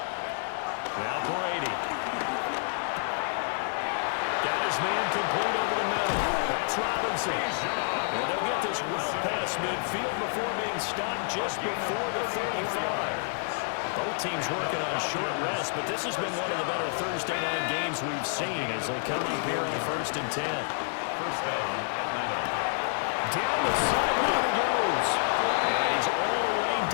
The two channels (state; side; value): silent; right; digital silence